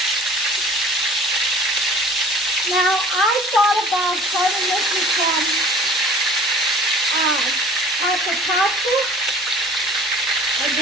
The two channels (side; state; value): both; normal; correlation 0.47